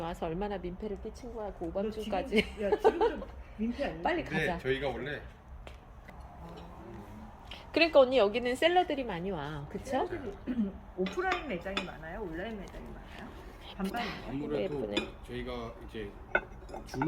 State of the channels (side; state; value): both; identical; correlation 1.00